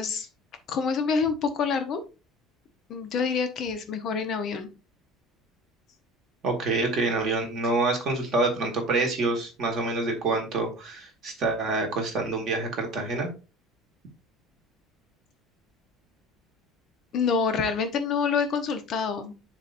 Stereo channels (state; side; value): normal; both; correlation 0.37